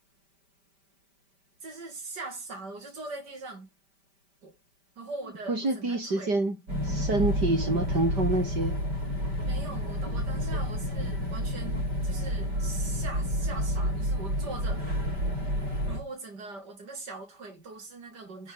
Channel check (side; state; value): left; late; 5.1 ms